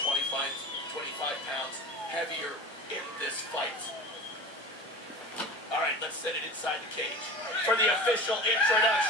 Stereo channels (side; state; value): both; normal; correlation 0.35